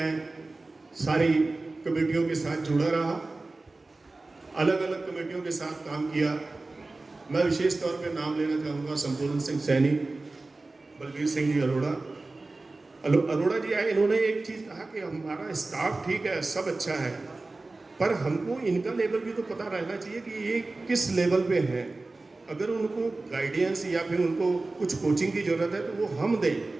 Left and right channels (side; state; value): left; quieter; 3.3 dB